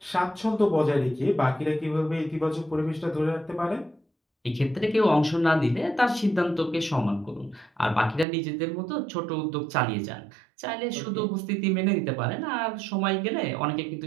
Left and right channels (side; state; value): left; drops out; at 8.2 s